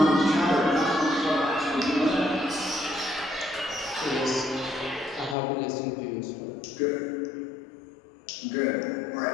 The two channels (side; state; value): right; drops out; at 5.4 s